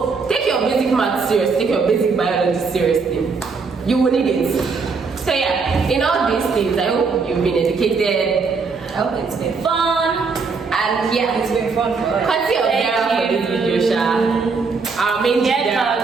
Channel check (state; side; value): quieter; left; 4.7 dB